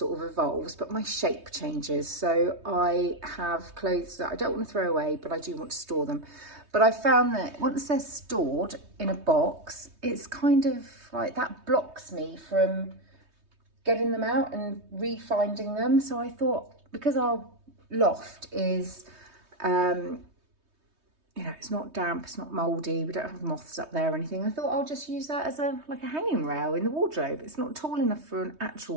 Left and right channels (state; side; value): late; left; 3.2 ms